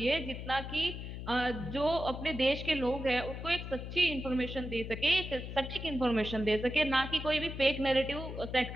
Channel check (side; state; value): left; noise; hum, 8 dB below the sound